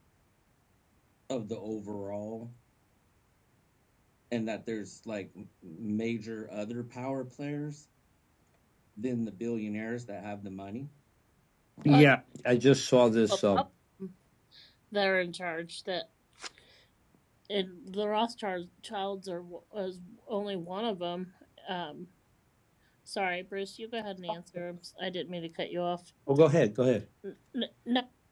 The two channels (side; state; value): both; identical; correlation 1.00